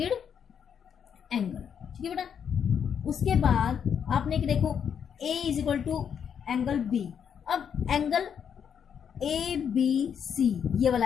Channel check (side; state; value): right; quieter; 7.8 dB